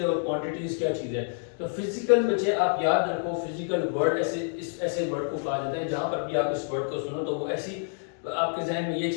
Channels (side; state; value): right; silent; 59 dB below the other